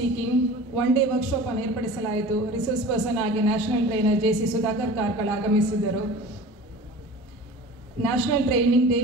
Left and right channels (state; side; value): normal; both; correlation 0.39